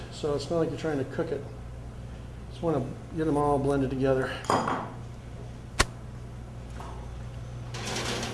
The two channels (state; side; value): identical; both; correlation 1.00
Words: so it's not like you're trying to cook it. Just want to get them all blended together.